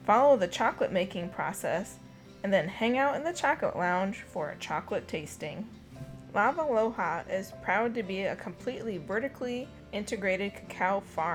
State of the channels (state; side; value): identical; both; correlation 1.00